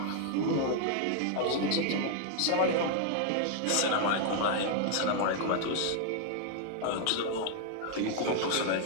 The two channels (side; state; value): both; different; correlation 0.00